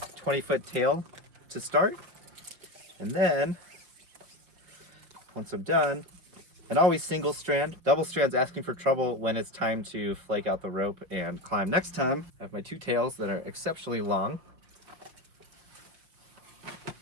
20-foot tail to start. And then, once I'm done, and always single strand. Double strand's asking for trouble when it's time to flake out the rope and climb. Next time, I have my 2 tails that are exceptionally long.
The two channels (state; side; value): late; left; 5.7 ms